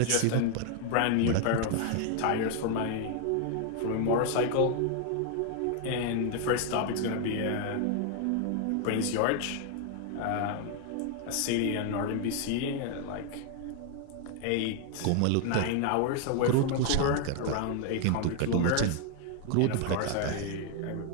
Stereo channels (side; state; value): both; different; correlation 0.00